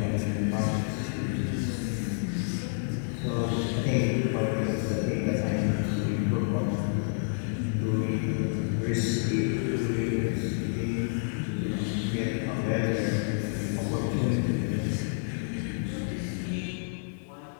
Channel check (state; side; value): silent; right; digital silence